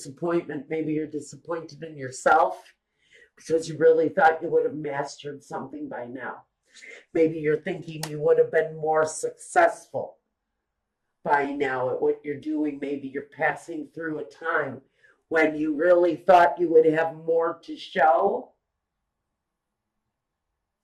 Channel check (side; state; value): both; identical; correlation 1.00